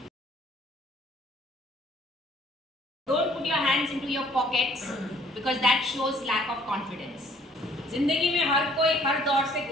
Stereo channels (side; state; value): both; normal; correlation 0.59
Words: Don't put your hands into your pockets because that shows lack of confidence. जिंदगी में हर कोई हर दौर से